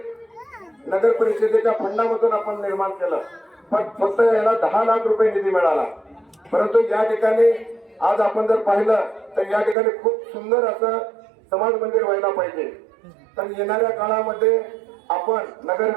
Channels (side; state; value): left; drops out; at 9.8 s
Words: नगर परिषदेच्या फंडामधून आपण निर्माण केलं. पण फक्त याला 10 लाख रुपये निधी मिळाला. परंतु या ठिकाणी आज आपण जर पाहिलं तर या ठिकाणी खूप सुंदर असं समाज मंदिर व्हायला पाहिजे. तर येणाऱ्या काळामध्ये आपण नगर